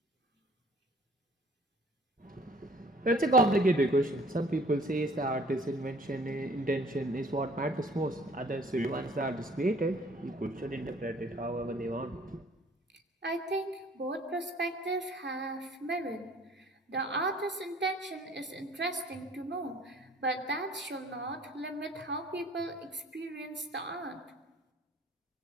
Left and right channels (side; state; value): both; normal; correlation 0.55